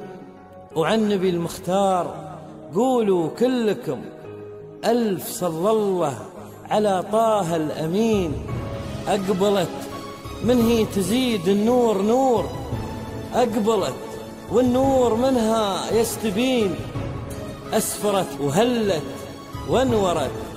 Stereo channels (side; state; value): both; identical; correlation 1.00